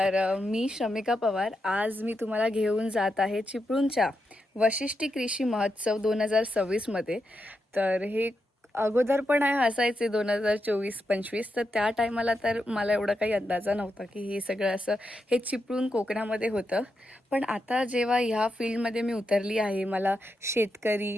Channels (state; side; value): normal; both; correlation 0.85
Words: मी शमिका पवार. आज मी तुम्हाला घेऊन जात आहे चिपळूणच्या वशिष्ठी कृषी महोत्सव 2026मध्ये. तर हे अगोदर पण असायचे 2024-25, तर त्या टायमाला तर मला एवढा काही अंदाजा नव्हता की हे सगळं असं हे चिपळूण कोकणामध्ये होतं. पण आता जेव्हा ह्या फील्डमध्ये मी उतरली आहे, मला शेतकरी,